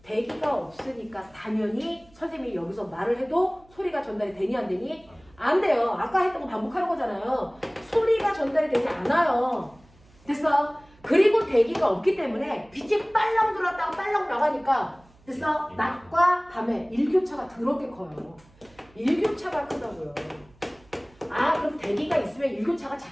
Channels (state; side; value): noise; right; hum, 29 dB below the sound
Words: 대기가 없으니까 당연히 선생님이 여기서 말을 해도 소리가 전달이 되니 안 되니? 안 돼요. 아까 했던 거 반복하는 거잖아요. 소리가 전달이 되지 않아요. 됐어? 그리고 대기가 없기 때문에 빛이 빨랑 들어왔다가 빨랑 나가니까 됐어? 낮과 밤에 일교차가 더럽게 커요. 일교차가 크다고요. 아, 그럼 대기가 있으면 일교차가